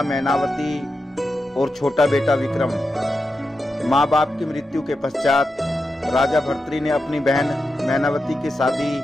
मैनावती और छोटा बेटा विक्रम। माँ बाप की मृत्यु के पश्चात राजा भर्तृ ने अपनी बहन मैनावती की शादी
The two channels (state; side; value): normal; both; correlation 0.89